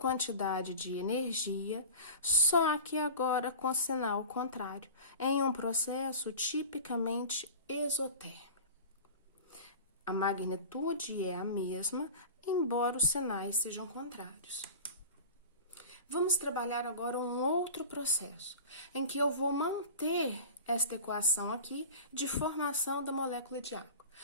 de energia, só que agora com sinal contrário, em um processo tipicamente exotérmico. A magnitude é a mesma, embora os sinais sejam contrários. Vamos trabalhar agora um outro processo, em que eu vou manter esta equação aqui de formação da molécula de água.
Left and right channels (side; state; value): both; inverted; correlation -0.35